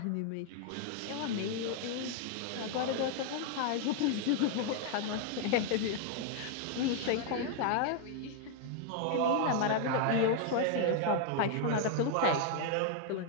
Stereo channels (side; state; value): both; different; correlation 0.00